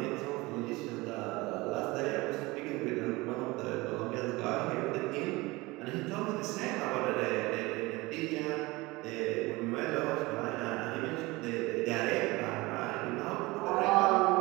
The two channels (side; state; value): left; quieter; 22.1 dB